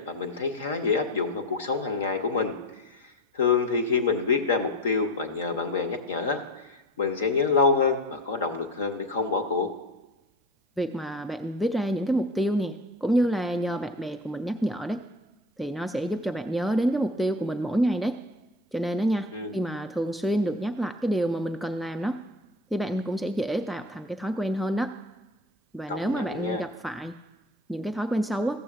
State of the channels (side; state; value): both; normal; correlation 0.34